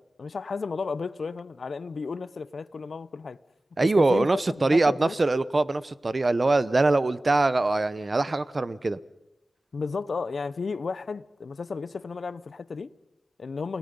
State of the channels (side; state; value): both; normal; correlation 0.96